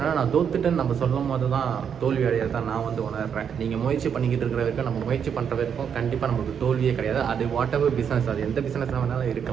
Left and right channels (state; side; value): quieter; left; 7.7 dB